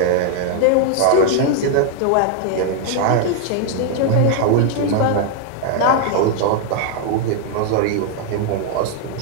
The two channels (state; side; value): different; both; correlation 0.00